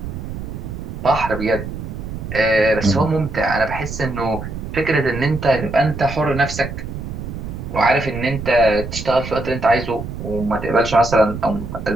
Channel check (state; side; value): noise; right; rumble, 8 dB below the sound